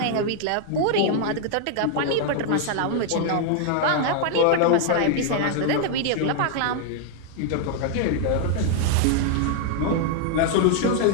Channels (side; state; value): both; different; correlation 0.00